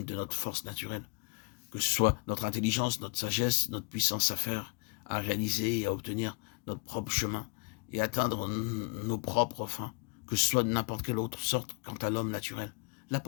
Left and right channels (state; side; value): quieter; right; 33.5 dB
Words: de notre force naturelle, que ce soit notre intelligence, notre sagesse, notre puissance à faire, à réaliser et à obtenir notre propre chemin, et atteindre nos propres fins, que ce soit de n'importe quelle autre sorte quant à l'homme naturel, la